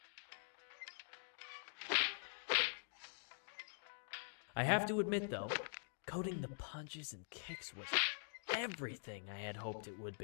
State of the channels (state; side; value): silent; right; digital silence